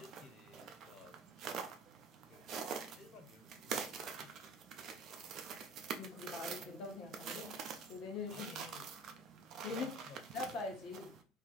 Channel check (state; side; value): normal; both; correlation 0.44